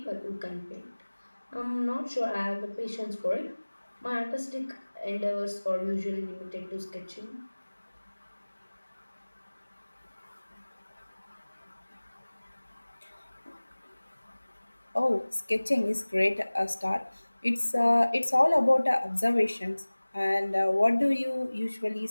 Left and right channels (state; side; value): inverted; both; correlation -1.00